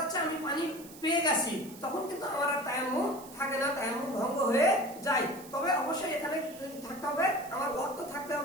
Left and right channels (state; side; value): noise; right; hiss, 18 dB below the sound